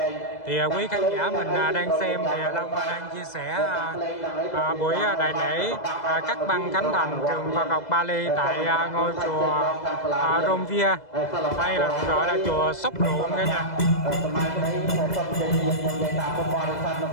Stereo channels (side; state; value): right; late; 2.0 ms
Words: Thì quý khán giả mình đang xem thì Long đang chia sẻ buổi đại lễ cắt băng khánh thành trường Phật học Bali tại ngôi chùa Romvia, hay là gọi là chùa Sóc Ruộng cả nhà. ខ្ញុំនិយាយតាមបរិបទនៅ